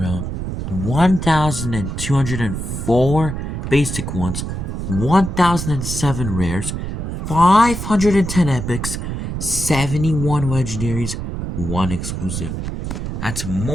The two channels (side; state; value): right; noise; rumble, 5 dB below the sound